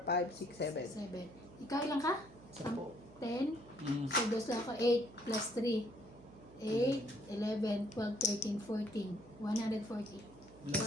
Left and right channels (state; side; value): noise; right; hum, 21 dB below the sound